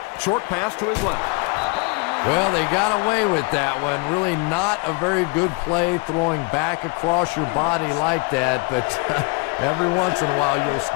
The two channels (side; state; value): right; quieter; 28.2 dB